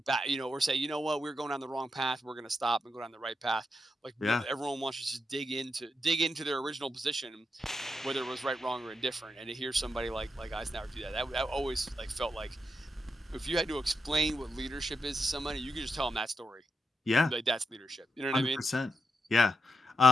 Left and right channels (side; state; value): both; normal; correlation 0.85